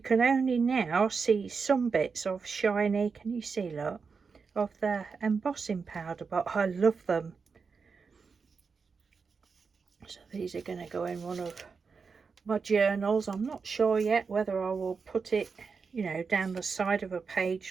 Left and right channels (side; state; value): left; quieter; 5.2 dB